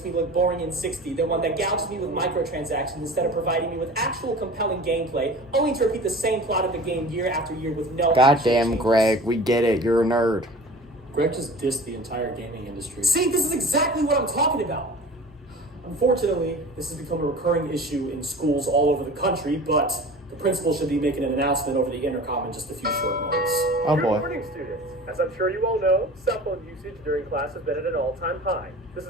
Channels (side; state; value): both; normal; correlation 0.39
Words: me look boring and 60 than one that gouges me with microtransactions instead of providing me with actual compelling gameplay, only to repeat the same plot of the game year after year with no Goddamn, Greg, we get it. You're a nerd. Greg just dissed the entire gaming industry. See, this is exactly what I'm talking about. Unfortunately, this has become a recurring issue in schools all over the country, but the principal should be making an announcement over the intercom in just a few short moments. Oh boy. Good morning, students. As I'm sure you all know, cell phone usage during class has been at an all-time high. This